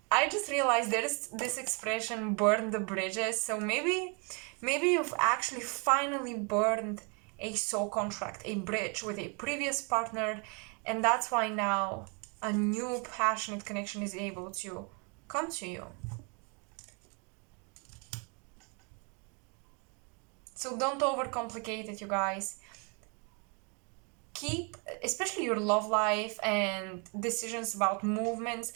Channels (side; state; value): left; quieter; 34.6 dB